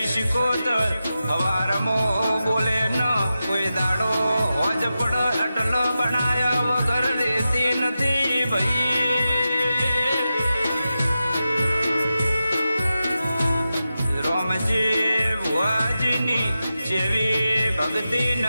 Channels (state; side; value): inverted; both; correlation -0.91